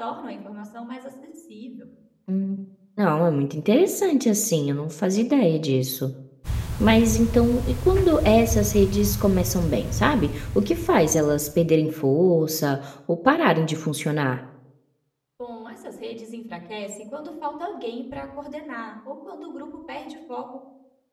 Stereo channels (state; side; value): identical; both; correlation 1.00